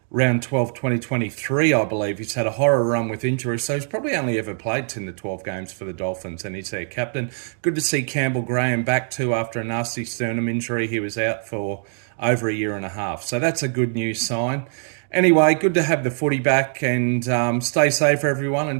round 12, 2023, I believe. He's had a horror run with injuries, so he's probably only ever played 10 to 12 games for the Dolphins, and he's their captain. Good to see Campbell Graham back too after a nasty sternum injury. He was out for over a year and a half, so that's a good news sign. Anyway, good to have the footy back, and stay safe, everyone.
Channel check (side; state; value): left; silent; 58 dB below the other